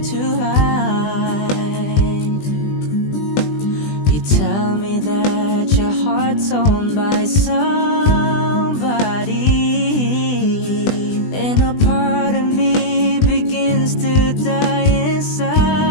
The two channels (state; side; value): late; right; 20 ms